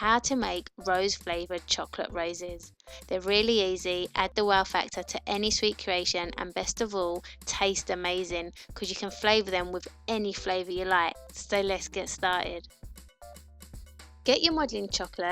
to make rose flavoured chocolate roses. They're really easy, add the wow factor to any sweet creation, and best of all, taste amazing because you can flavour them with any flavour you like. So let's get started. Get your modelling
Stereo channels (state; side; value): identical; both; correlation 1.00